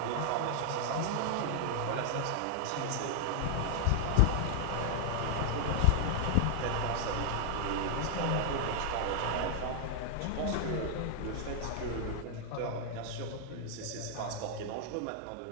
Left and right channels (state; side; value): different; both; correlation 0.00